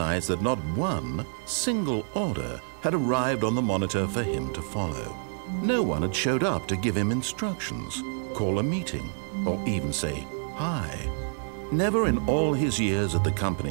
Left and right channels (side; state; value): left; silent; digital silence